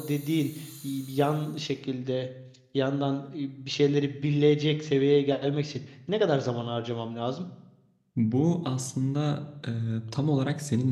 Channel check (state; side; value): identical; both; correlation 1.00